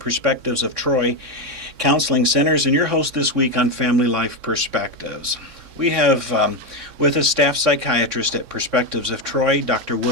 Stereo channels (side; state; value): left; late; 3.6 ms